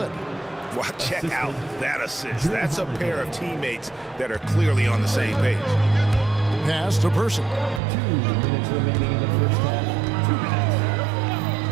Well, check out that assist. That's a pair of teammates that are clearly on the same page. Pass to Person. 2 minutes remaining in the first half. 2 minutes.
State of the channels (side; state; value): left; drops out; at 7.8 s